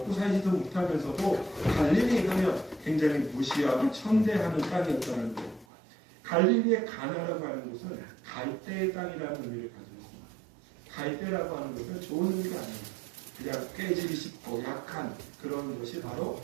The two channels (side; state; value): left; drops out; at 5.7 s